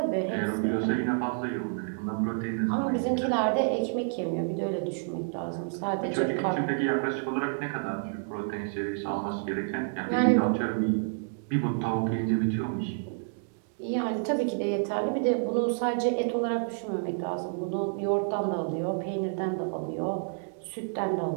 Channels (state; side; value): silent; left; digital silence